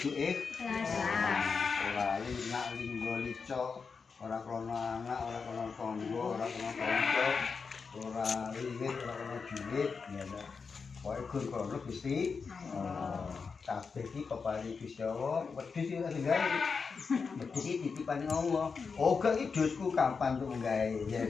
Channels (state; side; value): quieter; right; 5.2 dB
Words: ikhlas. Ora linak linggo lico, ora krana anak, ora krana tangga, ora krana kanca, ora liwit, ora krana duit, ya ta. Pokoke gur krana Gusti kabeh iki keparing Gusti Allah, wedhus iki sing gawe. Wedhus iki titipan Allah. Oh, gak iki dosku kapan tuh gawe ya.